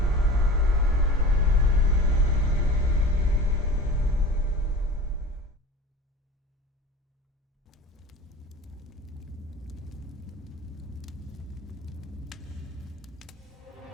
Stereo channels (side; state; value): both; normal; correlation 0.37